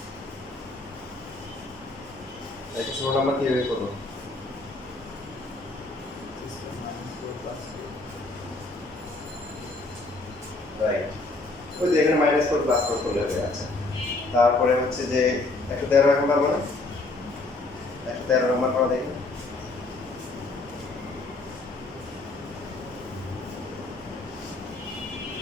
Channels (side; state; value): right; quieter; 3.1 dB